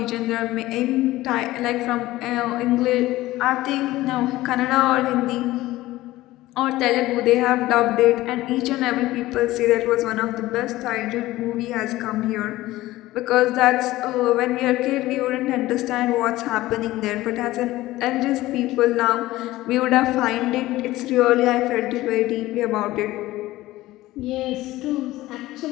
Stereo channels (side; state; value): right; quieter; 17.1 dB